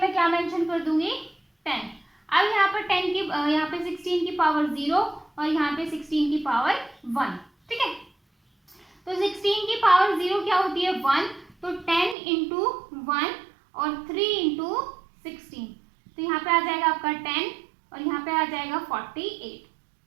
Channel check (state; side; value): drops out; left; at 12.2 s